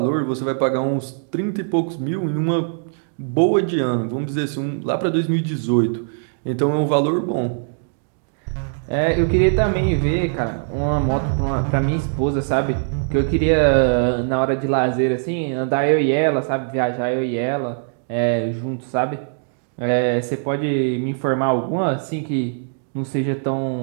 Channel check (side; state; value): left; silent; digital silence